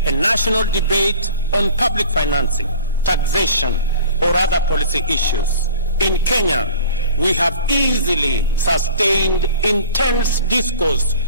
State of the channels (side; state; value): both; inverted; correlation -0.42